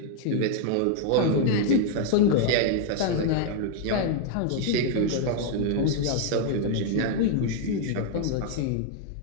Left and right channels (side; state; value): both; different; correlation 0.00